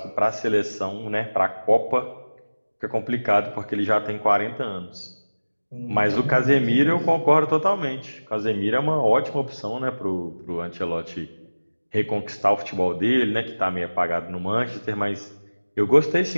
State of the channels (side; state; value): both; inverted; correlation -1.00